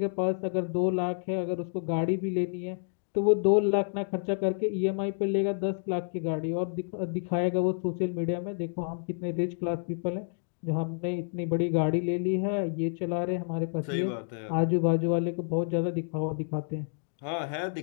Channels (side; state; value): right; silent; digital silence